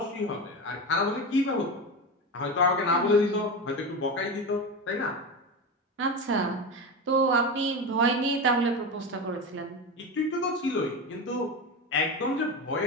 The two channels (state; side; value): normal; both; correlation 0.21